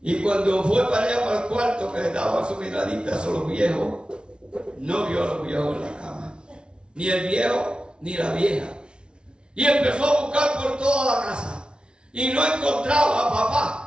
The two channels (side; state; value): left; late; 0.056 ms